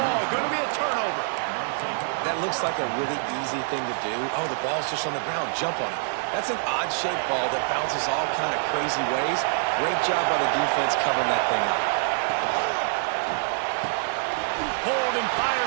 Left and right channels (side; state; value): left; silent; 61 dB below the other